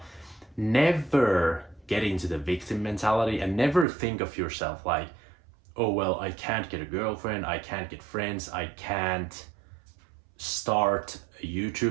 never get into the victim mentality and never think of yourself like, oh, well, I can't get a girlfriend, I can't get friends, I can't start a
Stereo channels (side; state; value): left; drops out; at 3.9 s